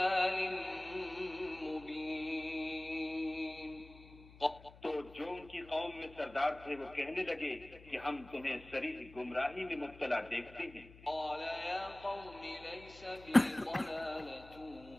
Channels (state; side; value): noise; left; hum, 20 dB below the sound